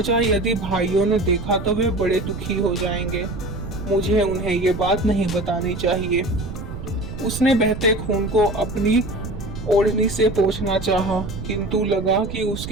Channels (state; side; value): noise; right; rumble, 8 dB below the sound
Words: यदि भाइयों ने देखा तो वे बड़े दुखी हो जाएंगे। मुझे उन्हें ये बात नहीं बतानी चाहिए। उसने बहते खून को अपनी ओढ़नी से पोंछना चाहा, किंतु लगा कि